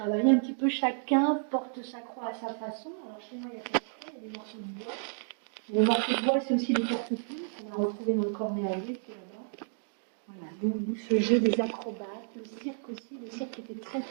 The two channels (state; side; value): silent; left; digital silence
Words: un petit peu chacun, porte sa croix à sa façon. Alors chez moi, il y a pas de croix, il y a des morceaux de bois. Les morceaux de bois, c'est aussi des porte-plumes qu'on a retrouvés dans le cornet à l'huile, qui est là-bas. Voilà. Donc ce jeu des acrobates, le cirque aussi, le cirque était très